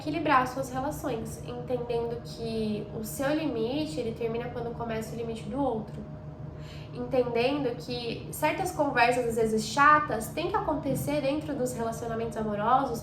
as suas relações, entendendo que o seu limite, ele termina quando começa o limite do outro. Entendendo que certas conversas, às vezes chatas, tem que acontecer dentro dos relacionamentos amorosos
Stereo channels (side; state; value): both; identical; correlation 1.00